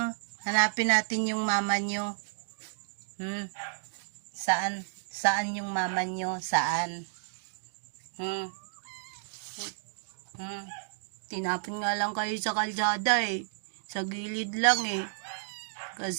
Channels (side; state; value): left; silent; digital silence